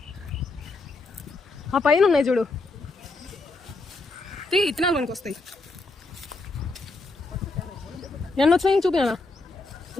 ఆ పైన ఉన్నాయి చూడు, ఇత్తనాలు మనకు వస్తాయి. ఎన్ని వచ్చినాయి చూపినా?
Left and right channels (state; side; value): quieter; right; 3.3 dB